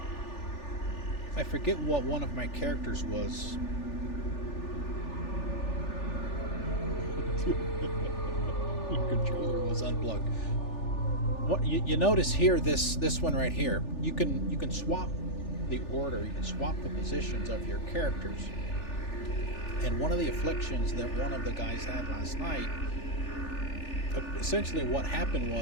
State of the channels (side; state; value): right; late; 3.4 ms